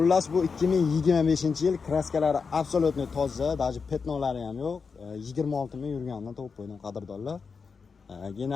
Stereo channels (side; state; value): right; quieter; 5.3 dB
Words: bu 2025-yil kraskalari absolutni toza, даже petnolari ham yo'q. 26 ming yurganidan topib qo'ydim qadrdonlar.